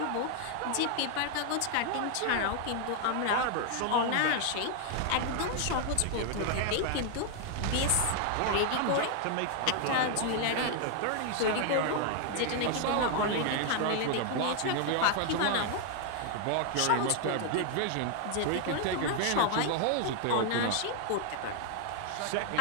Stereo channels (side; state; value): both; different; correlation 0.00